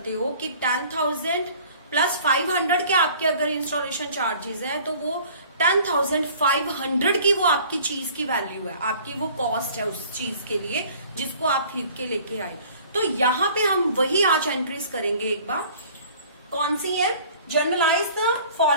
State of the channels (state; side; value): inverted; both; correlation -0.50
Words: हो कि 10,000 प्लस 500 के आपके अगर इंस्टॉलेशन चार्जेस है तो वो 10,500 की वो आपकी चीज की वैल्यू है, आपकी वो कॉस्ट है उस चीज के लिए जिसको आप खरीद के लेके आए। तो यहाँ पे हम वही आज एंट्रीज करेंगे। एक बार कौन सी है? Generalized the